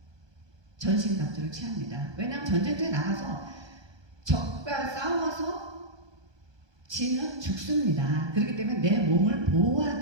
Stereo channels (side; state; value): left; late; 1.2 ms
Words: 전신갑주를 취합니다. 왜냐하면 전쟁터에 나가서 적과 싸워서 지면 죽습니다. 그렇기 때문에 내 몸을